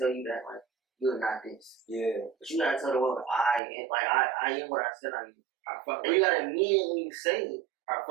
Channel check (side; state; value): left; drops out; at 3.6 s